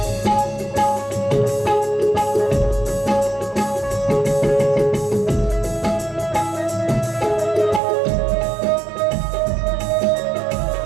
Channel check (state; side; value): drops out; left; at 7.8 s